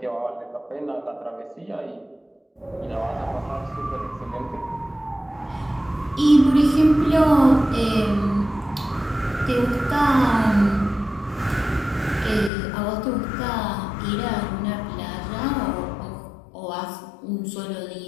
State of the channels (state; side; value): drops out; right; at 12.5 s